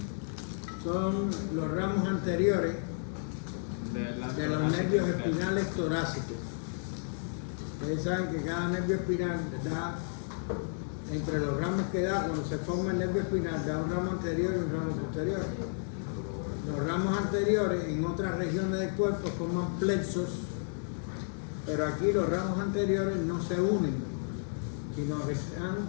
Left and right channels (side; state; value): right; silent; digital silence